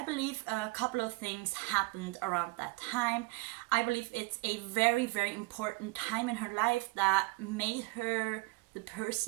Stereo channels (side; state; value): left; quieter; 25.4 dB